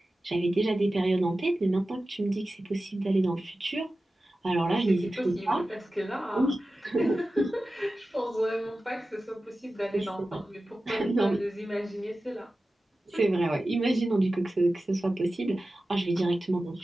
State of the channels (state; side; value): normal; both; correlation 0.95